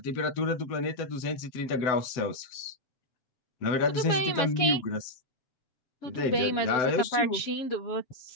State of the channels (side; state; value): right; late; 7.2 ms